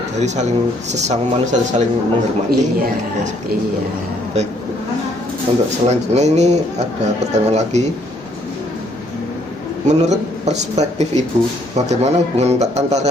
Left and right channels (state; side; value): normal; both; correlation 0.67